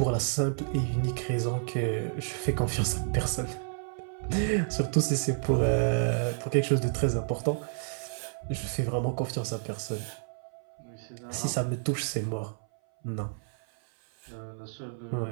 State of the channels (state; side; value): silent; left; 56 dB below the other